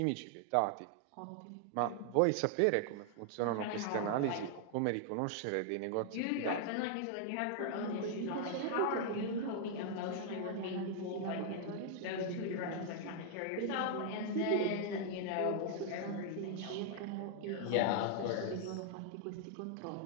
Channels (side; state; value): both; different; correlation 0.00